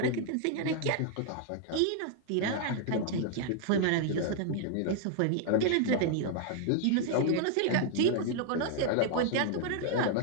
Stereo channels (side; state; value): both; different; correlation 0.00